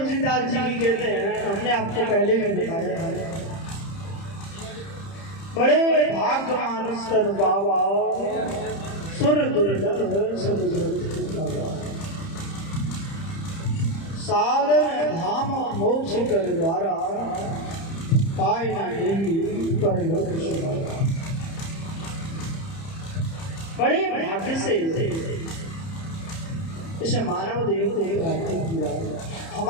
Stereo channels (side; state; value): right; late; 30 ms